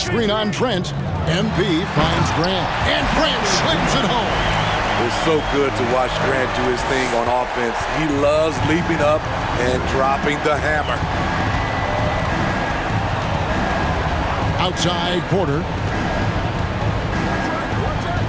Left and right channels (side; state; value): both; identical; correlation 1.00